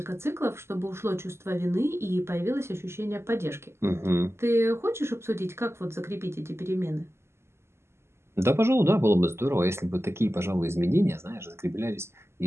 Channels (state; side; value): late; left; 0.12 ms